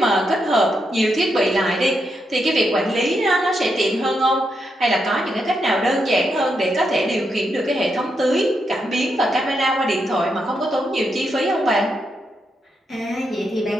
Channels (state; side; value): normal; both; correlation 0.82